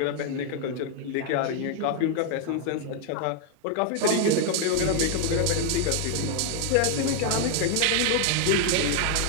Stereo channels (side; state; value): both; different; correlation 0.00